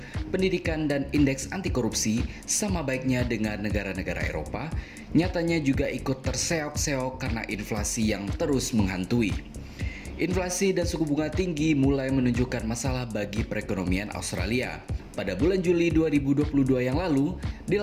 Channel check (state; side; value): identical; both; correlation 1.00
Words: pendidikan, dan indeks anti korupsi sama baiknya dengan negara-negara Eropa, nyatanya juga ikut terseok-seok karena inflasi yang terus menghantui. Inflasi dan suku bunga tinggi mulai menunjukkan masalah bagi perekonomian Australia. Pada bulan Juli 2022 yang lalu,